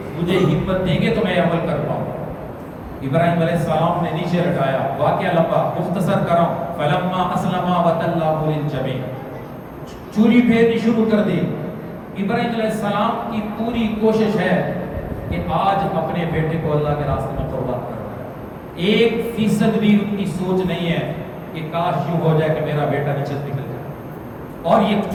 مجھے ہمت دیں گے تو میں عمل کر پاؤں۔ ابراہیم علیہ السلام نے نیچے لٹایا، واقعہ لمبا مختصر کروں، فلما اسلما وتلہ للجبین، چوری پھیرنی شروع کر دی۔ ابراہیم علیہ السلام کی پوری کوشش ہے کہ آج اپنے بیٹے کو اللہ کے راستے میں قربان کرنا ہے، 1% بھی ان کی سوچ نہیں ہے کہ کاش یوں ہو جائے کہ میرا بیٹا نیچے نکل جائے اور یہ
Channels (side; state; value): both; identical; correlation 1.00